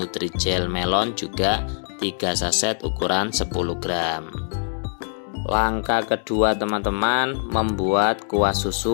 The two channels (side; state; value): right; silent; digital silence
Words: melon juga 3 saset ukuran 10 gram. Langkah kedua teman-teman, membuat kuah